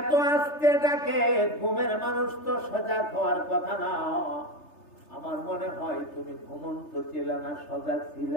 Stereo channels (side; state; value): right; late; 3.3 ms